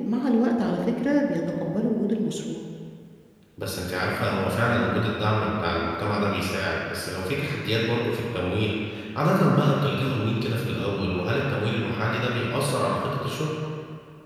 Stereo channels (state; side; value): identical; both; correlation 1.00